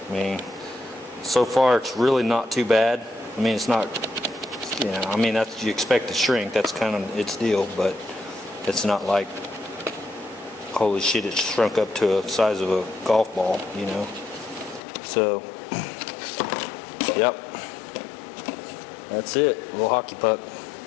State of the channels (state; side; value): drops out; right; at 14.8 s